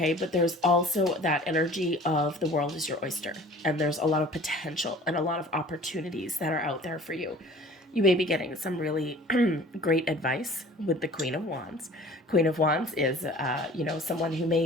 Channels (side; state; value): both; normal; correlation 0.46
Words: But there's also that energy of the world is your oyster, and there's a lot of potential and a lot of opportunities that are out there for you. You may be getting some really great advice with the Queen of Wands. Queen of Wands is, someone who